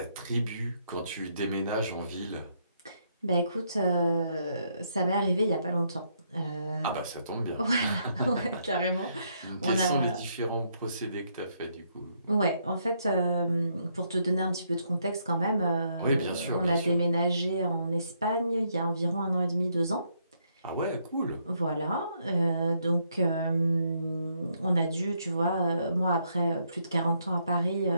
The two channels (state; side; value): inverted; both; correlation -0.74